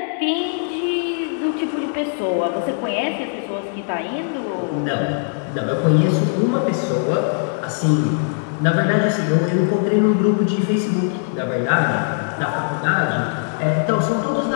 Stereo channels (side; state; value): right; silent; 65 dB below the other